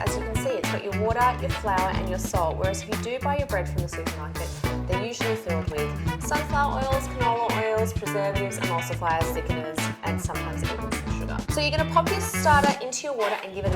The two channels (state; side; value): identical; both; correlation 1.00